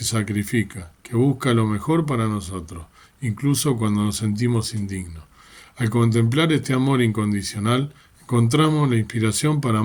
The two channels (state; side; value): identical; both; correlation 1.00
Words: sacrifica, que busca lo mejor para nosotros, incluso cuando nos sentimos indignos. Al contemplar este amor incondicional, encontramos la inspiración para